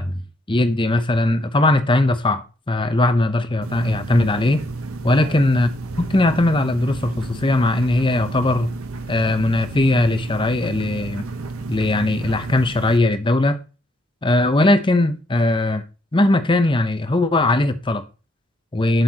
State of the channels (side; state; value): both; normal; correlation 0.73